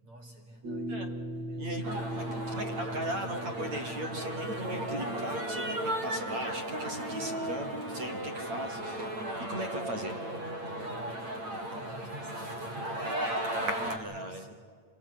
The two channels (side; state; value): left; late; 8.8 ms